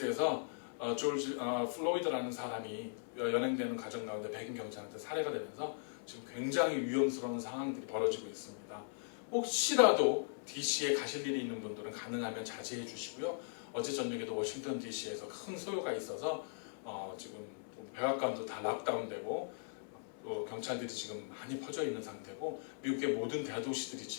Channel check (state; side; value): silent; right; 52 dB below the other